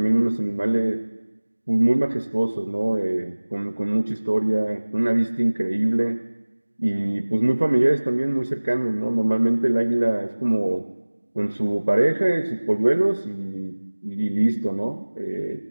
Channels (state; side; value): inverted; both; correlation -1.00